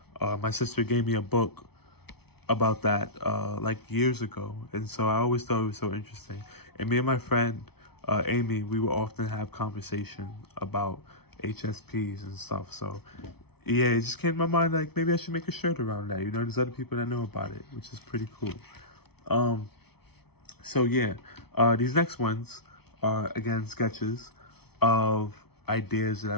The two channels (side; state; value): right; late; 0.97 ms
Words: My sister gave me a book about that like years ago, and so I always thought it was so interesting. And me and my friend Amy, we would often have conversation about HSPs and stuff. So yeah, it just came to my mind like maybe I should make a shirt around that. There's other people that know about it, which is pretty cool. So yeah, these next ones are again sketches of ideas that I